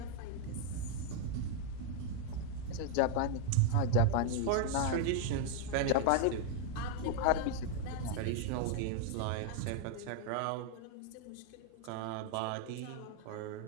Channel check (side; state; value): both; different; correlation 0.00